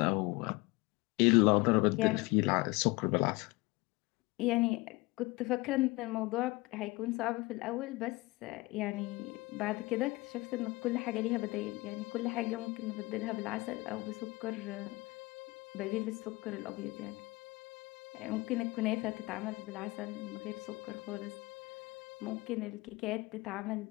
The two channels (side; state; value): right; quieter; 23.0 dB